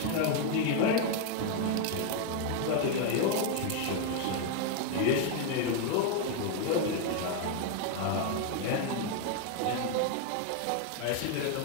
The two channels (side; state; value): both; different; correlation 0.01